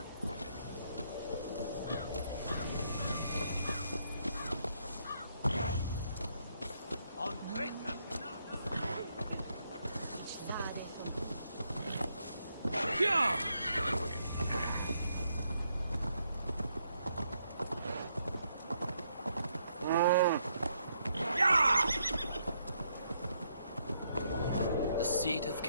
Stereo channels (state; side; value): inverted; both; correlation -0.75